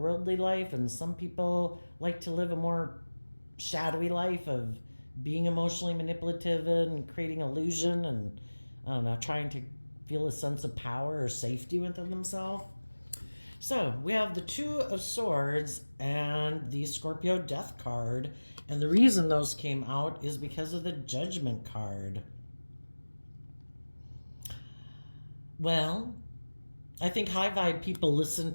life, and some people like to live a more shadowy life of being emotionally manipulative and creating illusion and I don't know, trying to feel a sense of power or safety within themselves. So we have the Two of Swords and the Scorpio Death card. And the reason those came out is because of the Judgment card. Well, I think high vibe people listen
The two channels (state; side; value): inverted; both; correlation -1.00